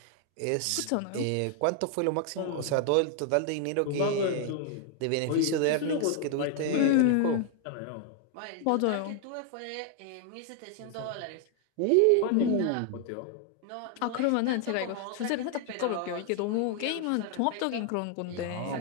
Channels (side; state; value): both; different; correlation 0.00